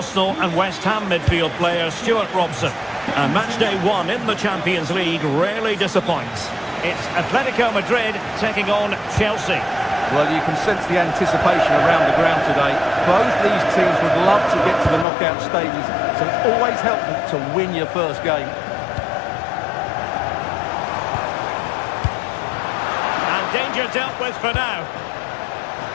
and West Ham midfield player Stuart Robson. And match day 1 in the Champions League rarely disappoints. It's Atletico Madrid taking on Chelsea. Well, you can sense the anticipation around the ground today. Both these teams would love to get to the knockout stages, so it's always helpful to win your first game. Danger dealt with for now.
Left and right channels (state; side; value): drops out; right; at 15.1 s